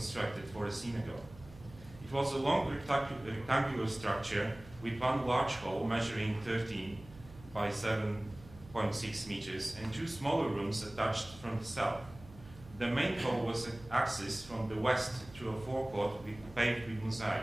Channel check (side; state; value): right; noise; hum, 19 dB below the sound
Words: for a synagogue. It was a long rectangular structure with one large hall measuring 13 by 7.6 meters and two smaller rooms attached from the south. The main hall was accessed from the west through a forecourt paved with mosaic.